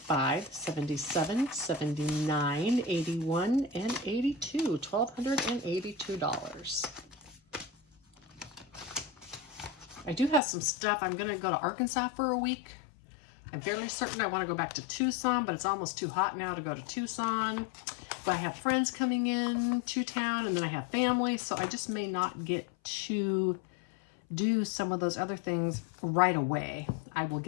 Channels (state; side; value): drops out; right; at 10.4 s